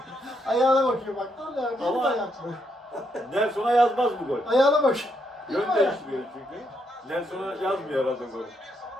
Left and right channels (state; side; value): normal; both; correlation 0.77